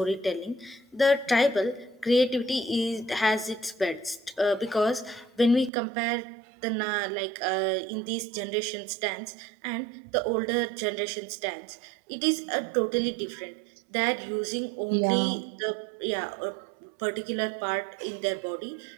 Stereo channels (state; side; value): drops out; left; at 5.7 s